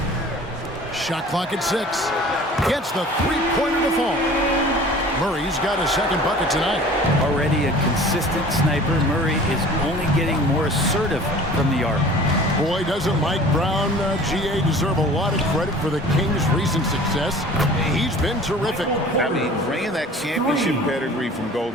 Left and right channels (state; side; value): normal; both; correlation 0.45